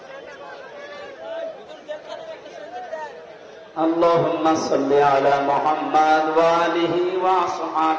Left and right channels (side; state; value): both; identical; correlation 1.00